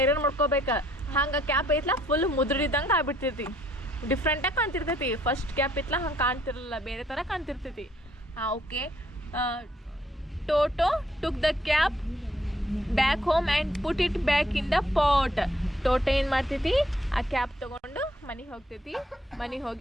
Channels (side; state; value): both; normal; correlation 0.67